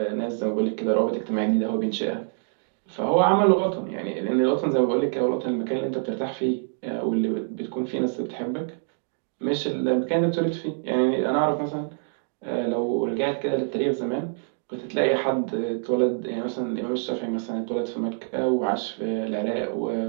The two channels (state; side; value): silent; left; digital silence